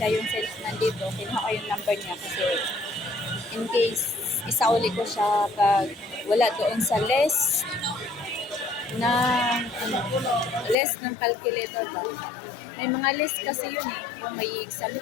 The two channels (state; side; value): drops out; right; at 10.8 s